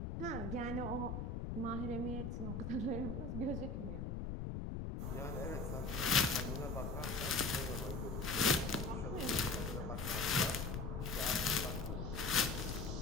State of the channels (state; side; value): noise; left; rumble, 3 dB below the sound